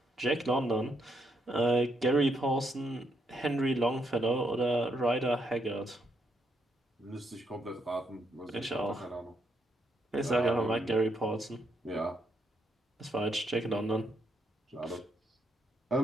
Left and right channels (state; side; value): normal; both; correlation 0.77